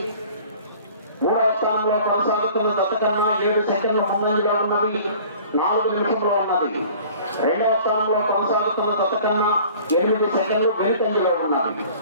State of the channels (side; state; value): both; inverted; correlation -0.48